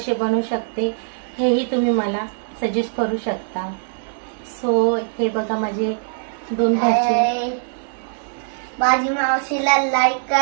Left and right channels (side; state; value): left; silent; digital silence